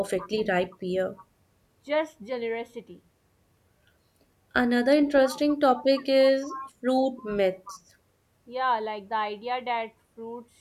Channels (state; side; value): identical; both; correlation 1.00